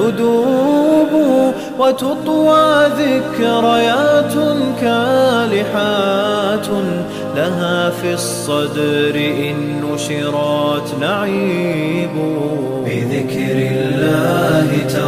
وتطوى ذكريات كالحات لها في الصدر إن نشرات نعيب بذكر الله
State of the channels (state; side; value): identical; both; correlation 1.00